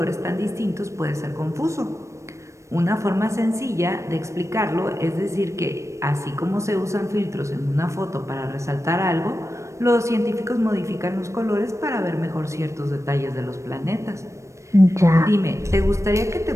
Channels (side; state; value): left; late; 0.15 ms